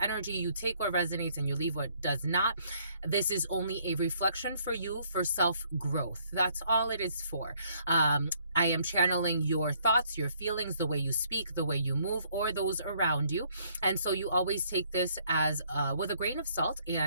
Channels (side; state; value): both; inverted; correlation -0.66